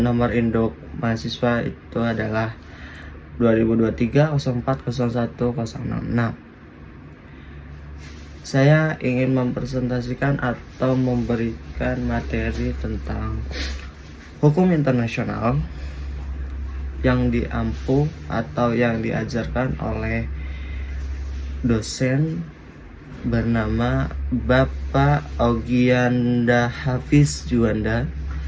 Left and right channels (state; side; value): identical; both; correlation 1.00